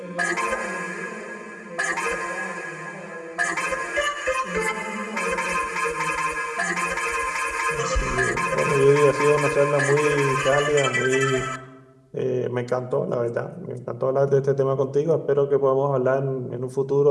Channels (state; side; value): identical; both; correlation 1.00